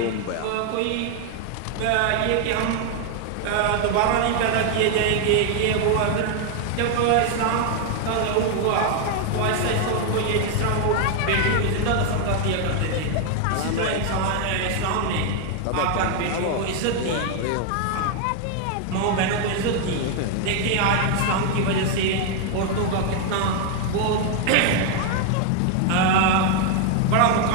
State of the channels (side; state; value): both; different; correlation 0.00